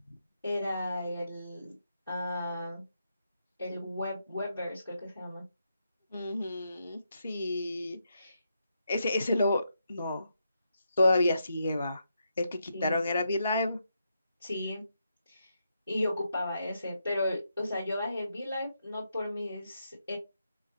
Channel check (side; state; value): both; inverted; correlation -0.82